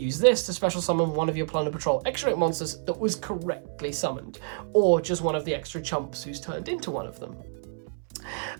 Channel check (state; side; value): silent; left; 59 dB below the other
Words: this to special summon one of your Plunder Patrol extra deck monsters that was correctly summoned, or just one of the extra chumps who's turned into one of them.